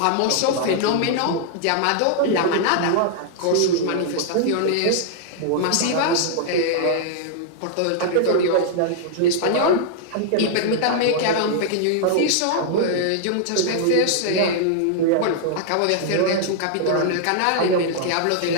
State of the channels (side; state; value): both; different; correlation -0.01